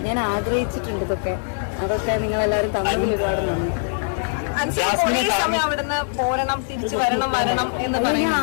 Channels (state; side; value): silent; right; digital silence